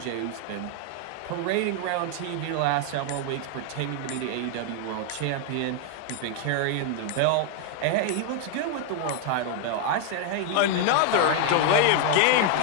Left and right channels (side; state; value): both; different; correlation 0.00